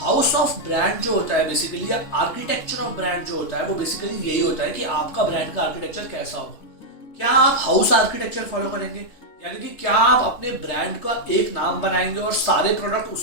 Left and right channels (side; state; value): right; late; 3.3 ms